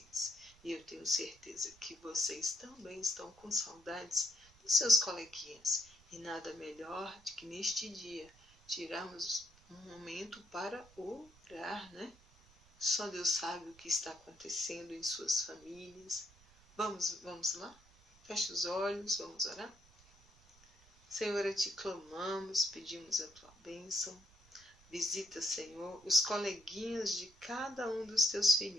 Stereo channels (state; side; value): noise; right; rumble, 27 dB below the sound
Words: E eu tenho certeza que vocês também estão com saudades dos seus coleguinhas. E nada melhor do que neste dia tirarmos um momento para orar, né? Só Deus sabe o que está acontecendo em suas famílias. Vamos lá? Feche os olhos, vamos orar? Senhor, a Ti clamamos, pedimos a Tua bênção. Visita, Senhor, os coleguinhas de cada um dos Teus